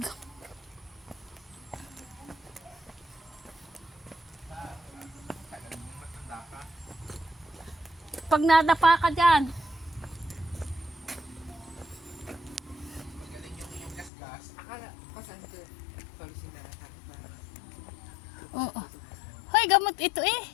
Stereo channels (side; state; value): right; drops out; at 14.1 s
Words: Pag nadapa ka dyan. Oo. Hoy, gamot ito eh.